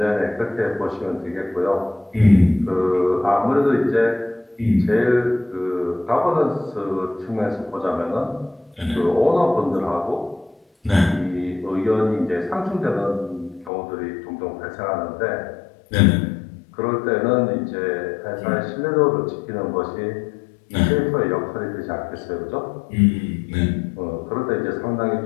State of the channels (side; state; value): right; drops out; at 13.7 s